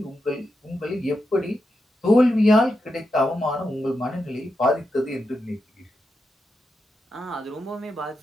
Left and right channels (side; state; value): both; normal; correlation 0.87